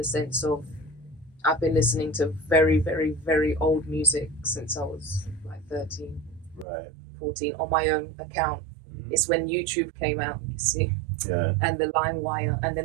sense of I've been listening to very, very, very old music since I was like 13, Right. 14 on my own account. It's when YouTube came out, you see, Yeah. and the LimeWire, and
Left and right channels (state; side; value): drops out; left; at 6.7 s